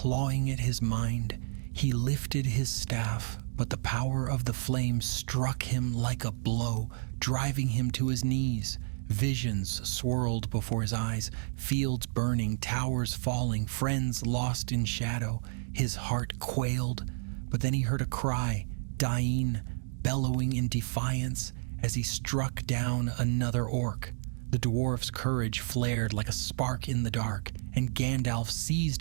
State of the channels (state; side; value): silent; left; digital silence